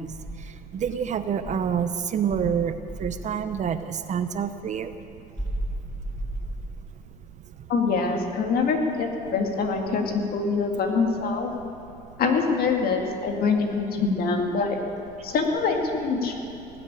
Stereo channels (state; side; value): noise; right; rumble, 19 dB below the sound